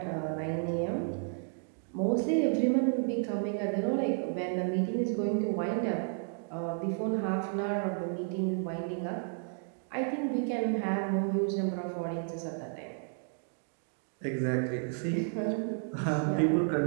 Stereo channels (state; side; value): silent; left; 56 dB below the other